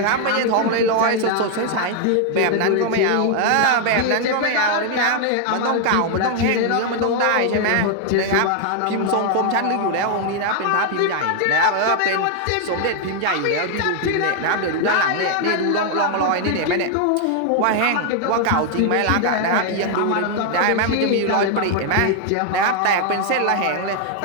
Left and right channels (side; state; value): both; different; correlation 0.00